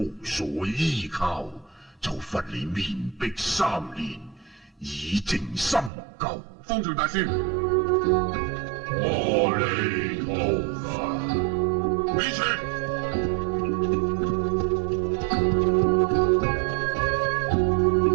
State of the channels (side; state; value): left; drops out; at 5.9 s